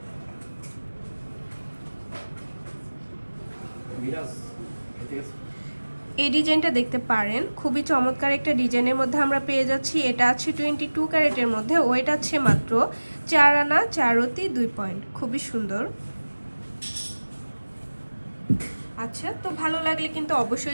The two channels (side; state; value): both; inverted; correlation -1.00